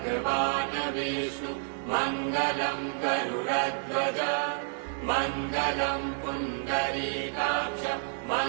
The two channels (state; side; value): silent; left; digital silence